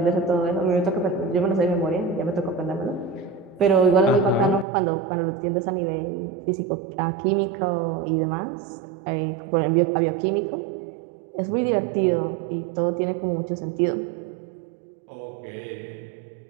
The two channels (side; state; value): left; drops out; at 4.7 s